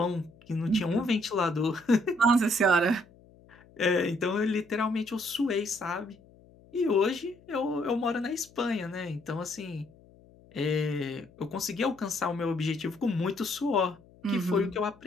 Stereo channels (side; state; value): left; noise; hum, 26 dB below the sound